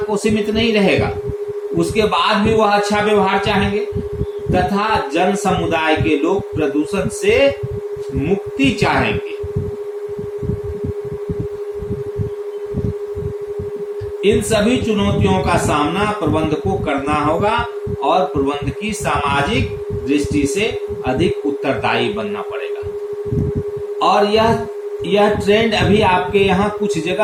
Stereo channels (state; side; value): identical; both; correlation 1.00